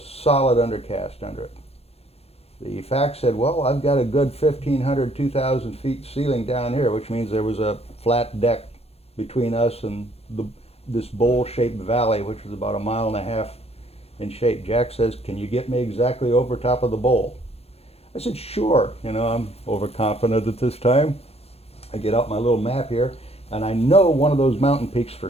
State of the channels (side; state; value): right; late; 0.29 ms